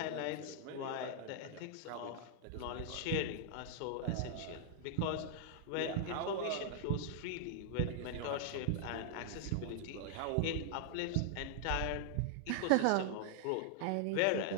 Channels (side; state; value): both; different; correlation -0.01